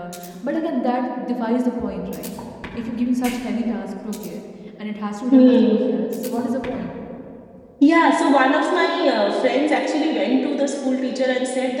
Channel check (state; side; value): identical; both; correlation 1.00